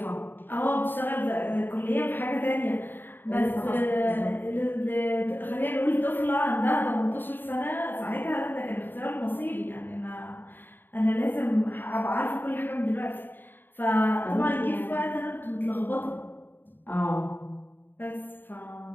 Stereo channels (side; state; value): right; late; 0.094 ms